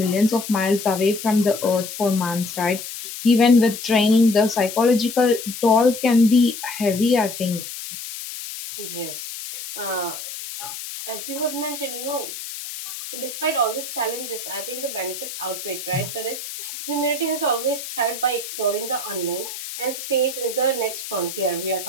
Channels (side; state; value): left; noise; hiss, 9 dB below the sound